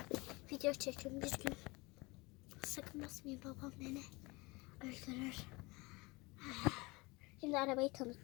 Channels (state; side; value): quieter; right; 24.6 dB